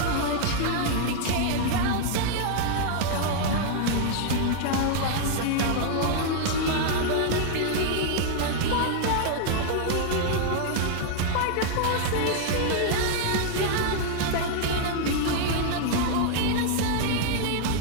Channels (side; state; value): both; different; correlation 0.00